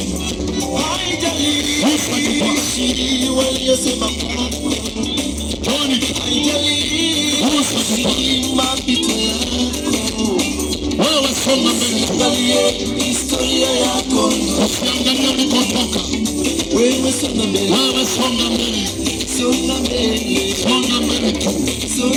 Wewe songa mbele, historia yako usiangalie ulikotoka. Wewe songa mbele, wewe songa mbele, songa mbele, songa mbele tu,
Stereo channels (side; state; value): both; identical; correlation 1.00